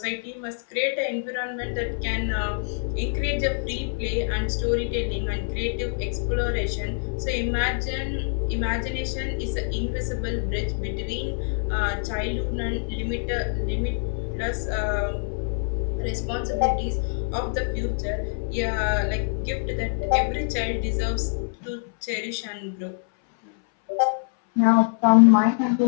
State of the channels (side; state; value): right; silent; 61 dB below the other